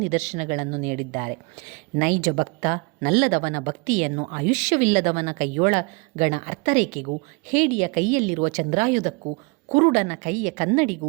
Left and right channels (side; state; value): left; quieter; 30.0 dB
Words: ನಿದರ್ಶನಗಳನ್ನು ನೀಡಿದ್ದಾರೆ. ನೈಜ ಭಕ್ತ ನಲ್ಲದವನ ಭಕ್ತಿಯನ್ನು ಆಯುಷ್ಯವಿಲ್ಲದವನ ಕೈಯೊಳಗಣ ಅರ್ಥರೇಖೆಗೂ ಹೇಡಿಯ ಕೈಯಲ್ಲಿರುವ ಚಂದ್ರಾಯುಧಕ್ಕೂ ಕುರುಡನ ಕೈಯ